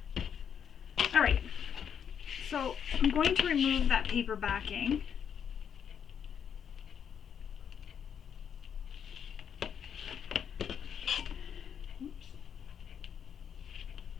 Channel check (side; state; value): right; quieter; 8.0 dB